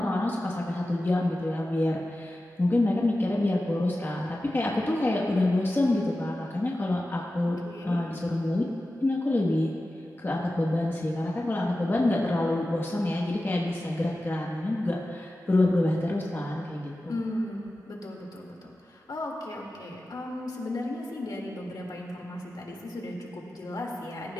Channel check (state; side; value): normal; both; correlation 0.94